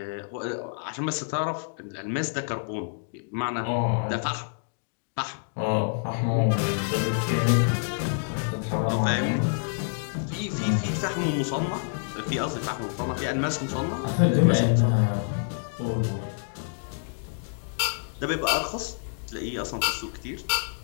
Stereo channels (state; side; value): silent; right; digital silence